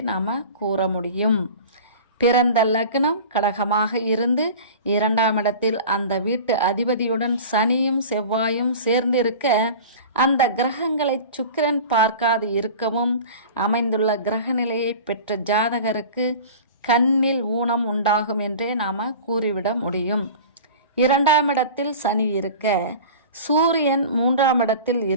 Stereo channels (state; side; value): inverted; both; correlation -0.37